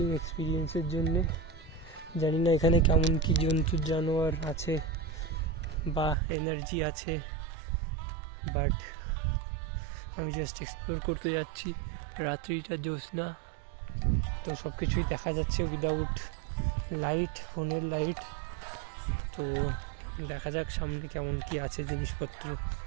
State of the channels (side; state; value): left; drops out; at 6.2 s